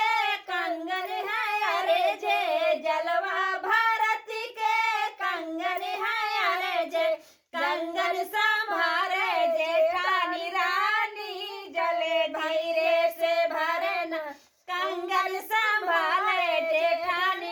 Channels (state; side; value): identical; both; correlation 1.00